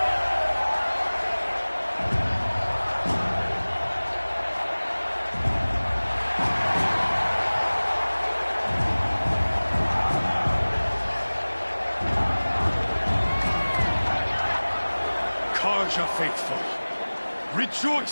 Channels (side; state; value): both; inverted; correlation -1.00